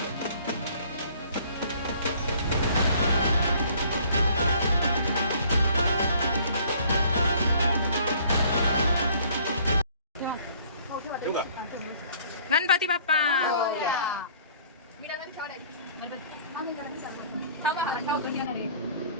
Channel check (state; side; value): inverted; both; correlation -0.56